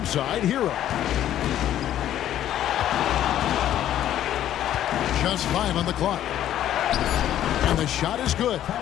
Hero. Just 5 on the clock. And the shot is good.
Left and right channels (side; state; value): right; quieter; 11.7 dB